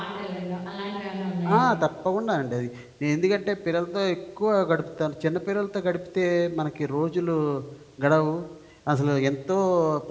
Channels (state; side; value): identical; both; correlation 1.00